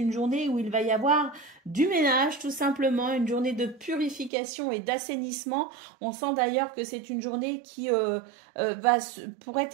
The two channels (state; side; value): drops out; left; at 4.3 s